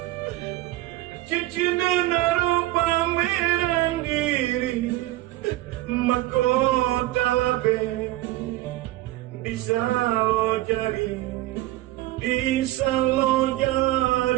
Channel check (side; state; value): left; quieter; 17.0 dB